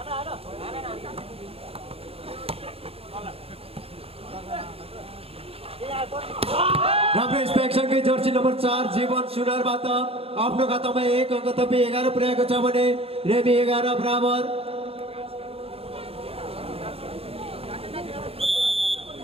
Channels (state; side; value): late; left; 0.28 ms